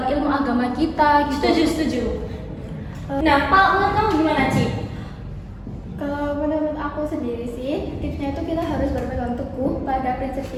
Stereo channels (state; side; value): identical; both; correlation 1.00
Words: ilmu agama kita gitu. Setuju. Nah, Pak, menurut kamu gimana, Ci? Kalau menurut aku sendiri sih, tipsnya itu kita harus berpegang teguh pada prinsip